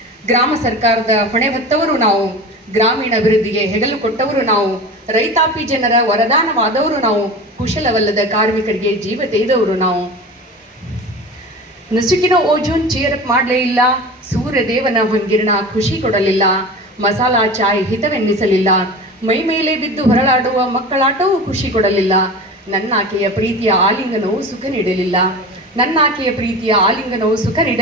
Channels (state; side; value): normal; both; correlation 0.33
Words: ಗ್ರಾಮ ಸರ್ಕಾರದ ಹೊಣೆ ಹೊತ್ತವರು ನಾವು, ಗ್ರಾಮೀಣ ಅಭಿವೃದ್ಧಿಗೆ ಹೆಗಲು ಕೊಟ್ಟವರು ನಾವು, ರೈತಾಪಿ ಜನರ ವರದಾನವಾದವರು ನಾವು, ಕುಶಲವಲ್ಲದ ಕಾರ್ಮಿಕರಿಗೆ ಜೀವ ತೆಗೆದವರು ನಾವು. ನಸುಕಿನ ಓಜೋನ್ ಚೇರಪ್ ಮಾಡಲೇ ಇಲ್ಲ, ಸೂರ್ಯದೇವನ ಹೊಂಗಿರಣ ಖುಷಿ ಕೊಡಲಿಲ್ಲ, ಮಸಾಲಾ ಚಾಯ್ ಹಿತವೆನ್ನಿಸಲಿಲ್ಲ, ಮೈ ಮೇಲೆ ಬಿದ್ದು ಹೊರಳಾಡುವ ಮಕ್ಕಳಾಟವೂ ಖುಷಿ ಕೊಡಲಿಲ್ಲ, ನನ್ನಾಕೆಯ ಪ್ರೀತಿಯ ಆಲಿಂಗನವು ಸುಖ ನೀಡಲಿಲ್ಲ, ನನ್ನಾಕೆಯ ಪ್ರೀತಿಯ ಆಲಿಂಗನವು ಸುಖ